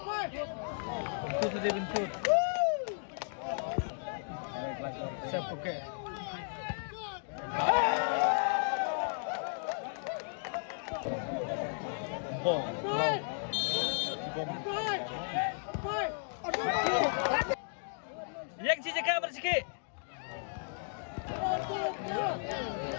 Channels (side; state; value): right; silent; digital silence